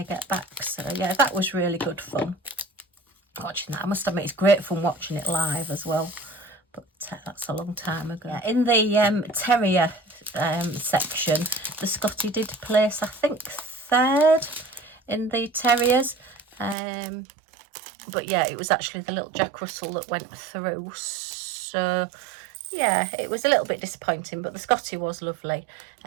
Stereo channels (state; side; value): drops out; left; at 16.8 s